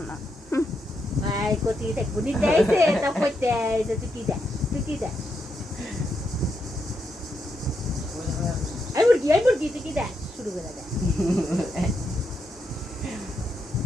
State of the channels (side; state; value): both; normal; correlation 0.81